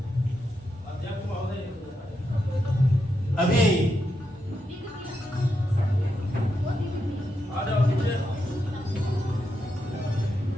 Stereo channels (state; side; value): normal; both; correlation 0.84